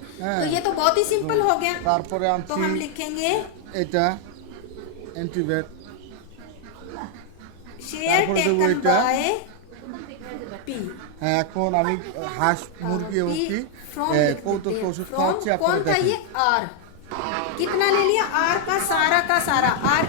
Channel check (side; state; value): both; different; correlation 0.00